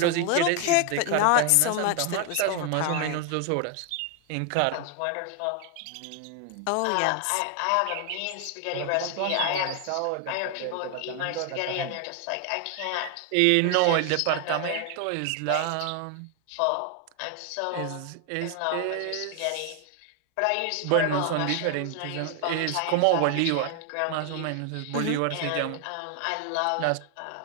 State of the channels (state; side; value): different; both; correlation 0.00